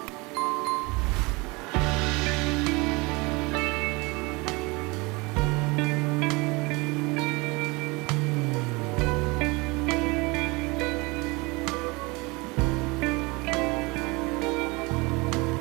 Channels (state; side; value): quieter; left; 25.7 dB